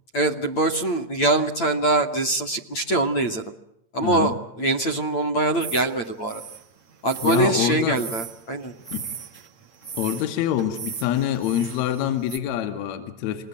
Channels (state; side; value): late; right; 8.8 ms